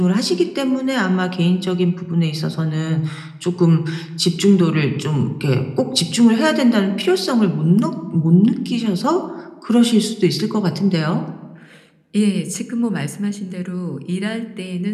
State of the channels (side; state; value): both; identical; correlation 1.00